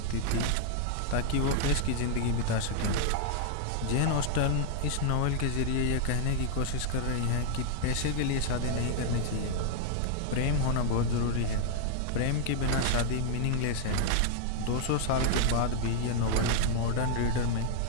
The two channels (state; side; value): different; both; correlation -0.01